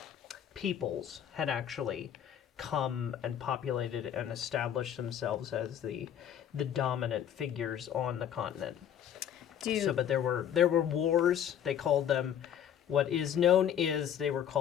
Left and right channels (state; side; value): quieter; right; 9.6 dB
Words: peoples had actually come and populated and established themselves as the dominant figures on the continent. But there were wars. They called them, what is known is they were